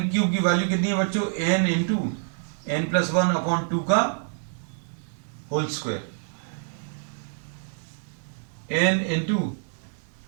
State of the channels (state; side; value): silent; left; digital silence